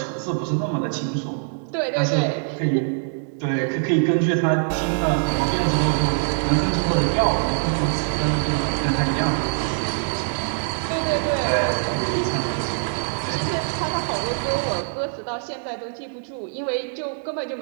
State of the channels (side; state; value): left; silent; digital silence